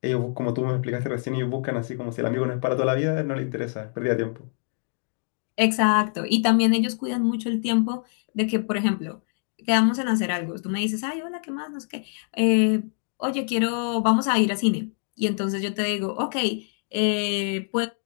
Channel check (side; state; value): right; silent; 62 dB below the other